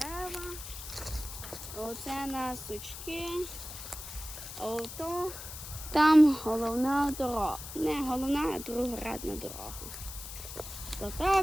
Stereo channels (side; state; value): left; noise; hiss, 10 dB below the sound